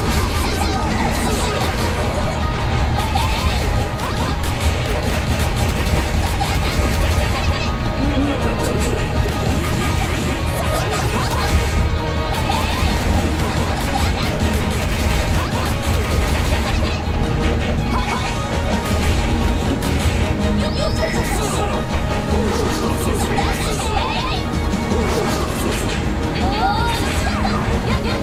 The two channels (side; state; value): both; identical; correlation 1.00